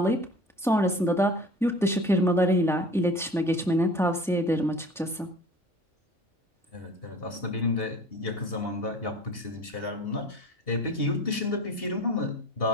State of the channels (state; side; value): normal; both; correlation 0.42